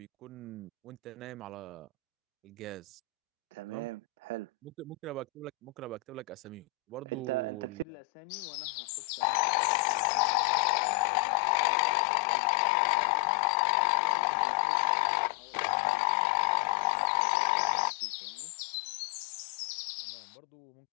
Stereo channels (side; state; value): right; drops out; at 7.9 s